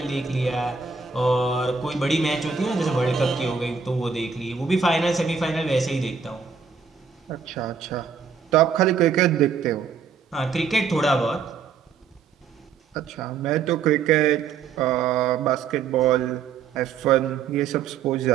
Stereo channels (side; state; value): left; quieter; 6.0 dB